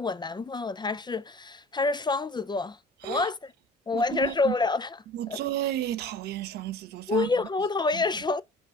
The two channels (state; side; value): normal; both; correlation 0.44